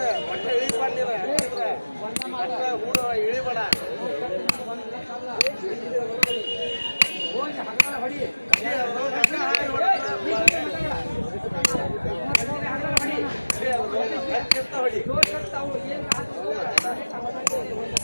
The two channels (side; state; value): both; inverted; correlation -1.00